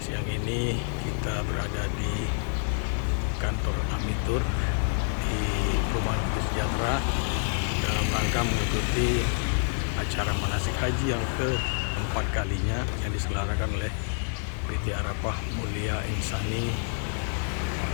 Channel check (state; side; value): silent; right; 59 dB below the other